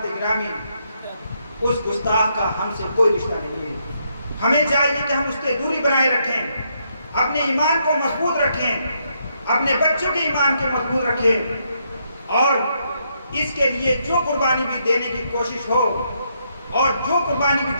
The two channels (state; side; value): inverted; both; correlation -0.76